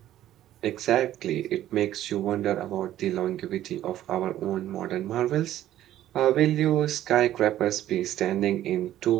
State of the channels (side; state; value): left; quieter; 12.8 dB